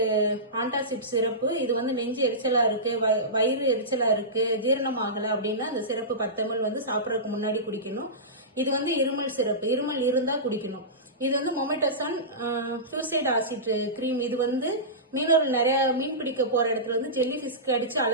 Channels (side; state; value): both; normal; correlation -0.19